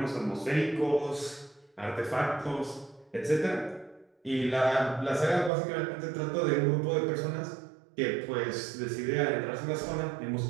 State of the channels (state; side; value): drops out; left; at 5.5 s